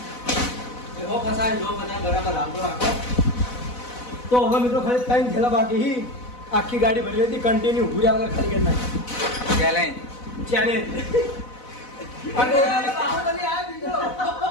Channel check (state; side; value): late; right; 4.0 ms